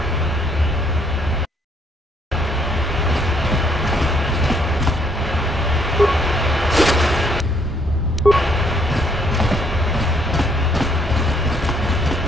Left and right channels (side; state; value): both; normal; correlation 0.68